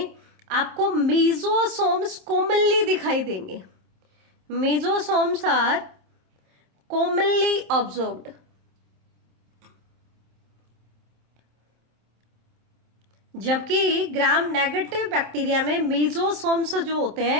आपको मेसोसोम्स कॉमनली दिखाई देंगे। mesosomes are commonly observed. जबकि ग्राम नेगेटिव बैक्टीरिया में मेसोसोम्स जो होते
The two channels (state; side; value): late; left; 27 ms